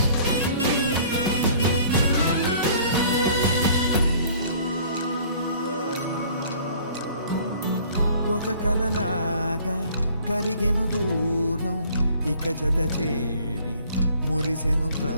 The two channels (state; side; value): inverted; both; correlation -0.54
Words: ఒక కలలాగా కరిగెను దూరం ఇక జత చేరి మురిసెను